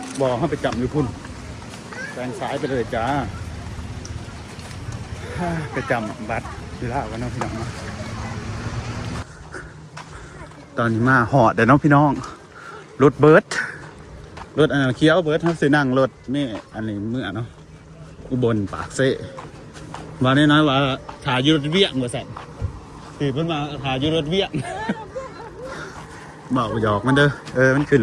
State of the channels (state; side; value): identical; both; correlation 1.00